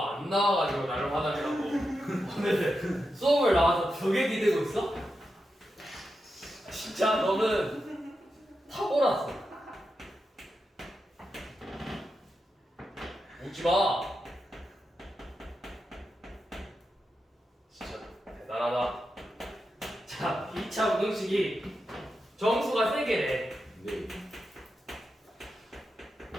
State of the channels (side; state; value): both; normal; correlation 0.88